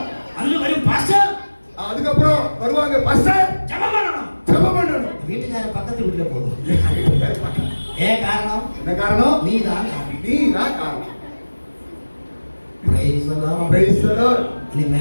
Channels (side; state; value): both; inverted; correlation -1.00